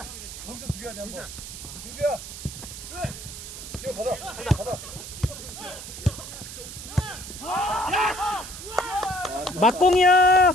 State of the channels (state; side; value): noise; right; hiss, 11 dB below the sound